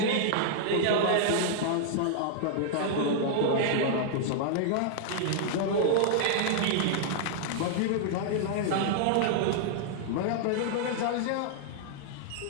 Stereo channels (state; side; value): different; both; correlation -0.01